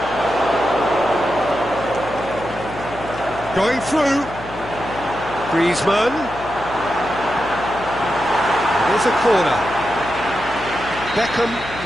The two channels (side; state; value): left; noise; hum, 14 dB below the sound